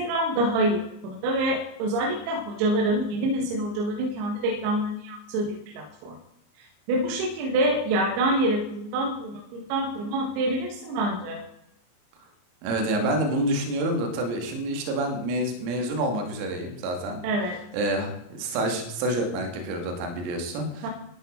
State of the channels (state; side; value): late; left; 34 ms